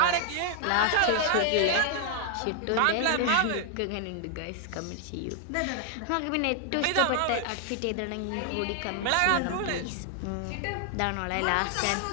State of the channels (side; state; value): both; different; correlation 0.00